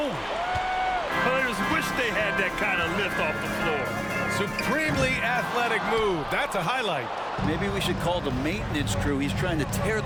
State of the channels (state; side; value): identical; both; correlation 1.00